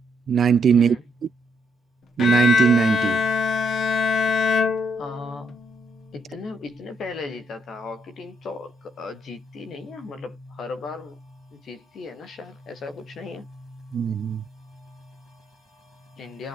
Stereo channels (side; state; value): both; normal; correlation 0.75